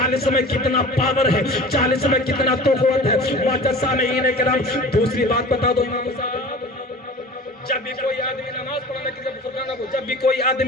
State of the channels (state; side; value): normal; both; correlation 0.39